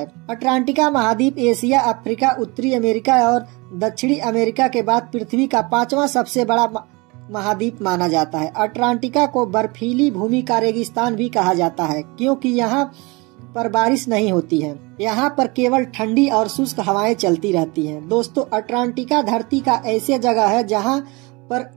अटलांटिका महाद्वीप एशिया, अफ्रीका, उत्तरी अमेरिका और दक्षिणी अमेरिका के बाद पृथ्वी का 5वां सबसे बड़ा महाद्वीप माना जाता है। अटलांटिका को बर्फीली भूमि का रेगिस्तान भी कहा जाता है, क्योंकि यहाँ पर बारिश नहीं होती है। यहाँ पर केवल ठंडी और शुष्क हवाएं चलती रहती हैं। दोस्तों, अटलांटिका धरती का ऐसी जगह है जहाँ पर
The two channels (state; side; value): quieter; left; 26.1 dB